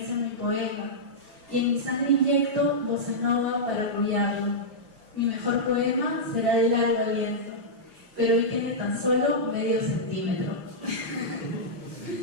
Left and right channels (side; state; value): left; late; 5.9 ms